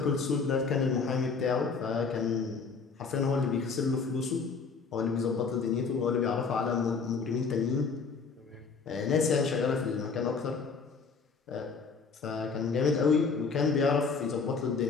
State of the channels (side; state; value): right; quieter; 5.0 dB